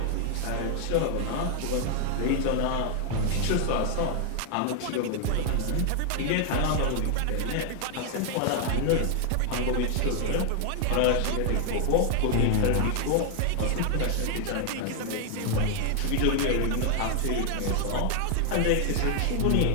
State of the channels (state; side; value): different; both; correlation 0.00